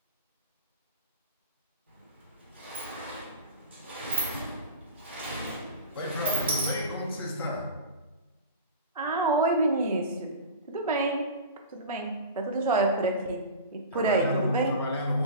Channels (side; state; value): both; inverted; correlation -0.32